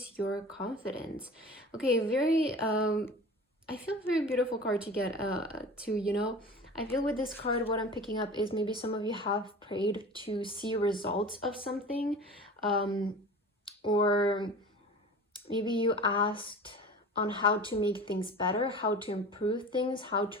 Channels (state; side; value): normal; both; correlation 0.37